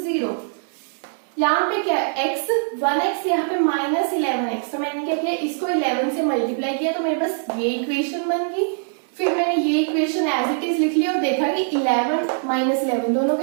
0। यहाँ पे क्या x 1x, यहाँ पे माइनस 11x। तो मैंने क्या किया, इसको 11 से मल्टीप्लाई किया तो मेरे पास ये इक्वेशन बन गई। फिर मैंने ये इक्वेशन एज इट इज लिख लिया और देखा कि 11 माइनस 11 दोनों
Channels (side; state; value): left; silent; digital silence